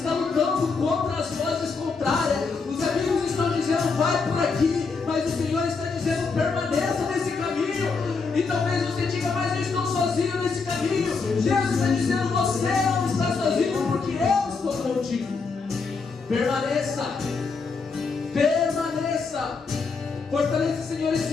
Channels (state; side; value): quieter; right; 4.6 dB